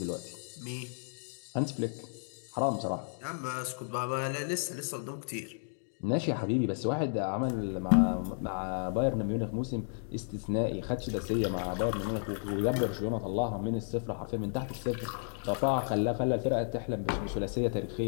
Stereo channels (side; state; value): right; silent; digital silence